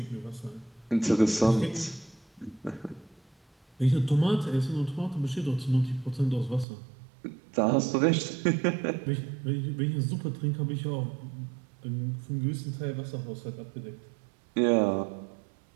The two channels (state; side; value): drops out; left; at 6.7 s